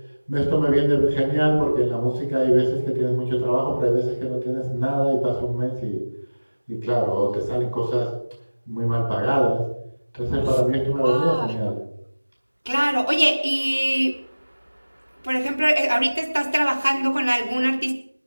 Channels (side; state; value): both; inverted; correlation -1.00